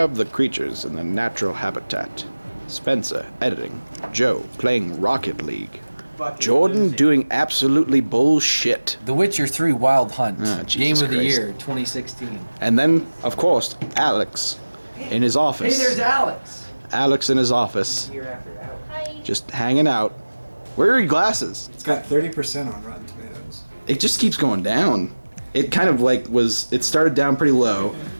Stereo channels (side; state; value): both; inverted; correlation -1.00